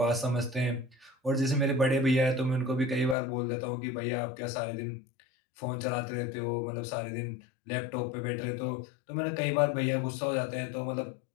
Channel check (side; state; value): right; drops out; at 3.2 s